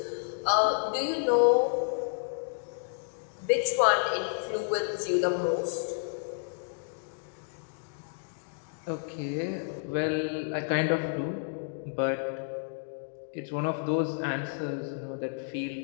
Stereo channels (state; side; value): silent; right; digital silence